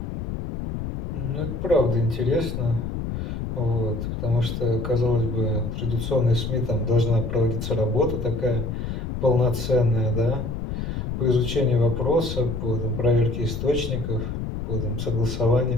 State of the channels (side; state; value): left; noise; rumble, 4 dB below the sound